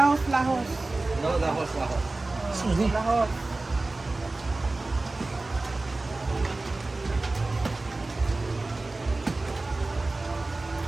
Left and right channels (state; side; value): quieter; left; 3.2 dB